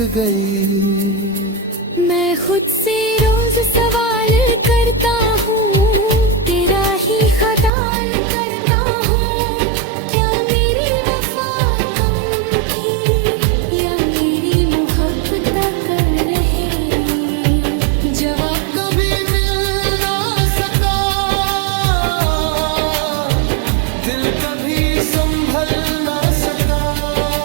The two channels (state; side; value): drops out; left; at 7.7 s